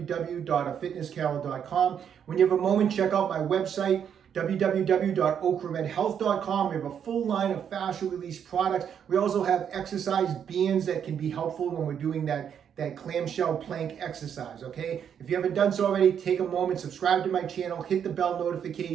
When you have a moment, check out my website, www.OcraMedHealth.com. We have a full line of fascia release products. We also have exercise bands that can be helpful when we're doing that clamshell plank exercise, okay? If you haven't done so already, take a moment, subscribe to my channel, hit the bell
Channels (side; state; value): left; quieter; 8.3 dB